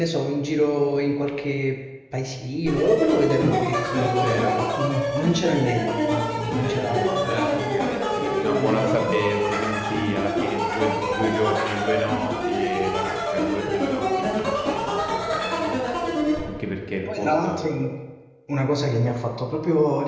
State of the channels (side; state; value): both; identical; correlation 1.00